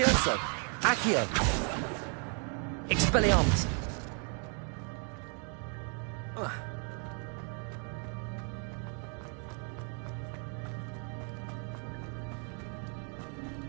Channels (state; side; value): quieter; left; 39.1 dB